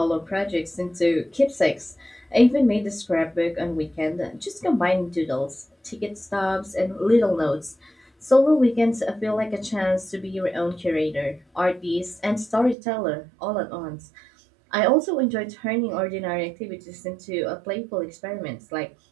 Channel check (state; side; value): drops out; left; at 12.8 s